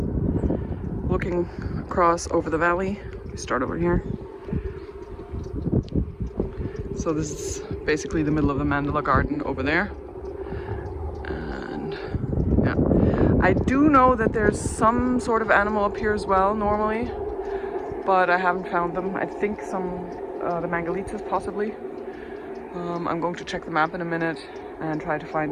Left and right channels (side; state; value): both; identical; correlation 1.00